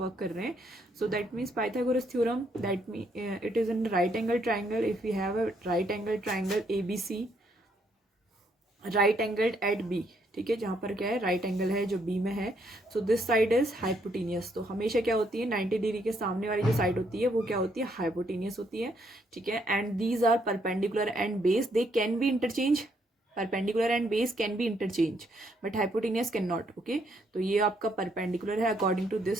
कर रहे हैं. So that means Pythagoras theorem that mean it is in right angle triangle. If we have a right angle triangle A B C, right angled at B, ठीक है, जहाँ पर क्या है राइट एंगल है जो बी में है. So this side is hypotenuse. तो हमेशा क्या होती है, 90 डिग्री के सामने वाली जो साइड होती है वो क्या होती है, हाइपोटेनियस होती है. ठीक है, and these are perpendicular and base, they can be interchange. Perpendicular and base can be interchange but hypotenuse can not. Okay, तो ये आपका परपेंडिकुलर है according to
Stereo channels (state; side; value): normal; both; correlation 0.72